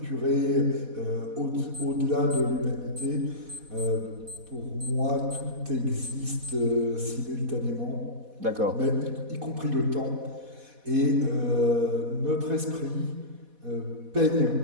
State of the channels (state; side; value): late; left; 4.1 ms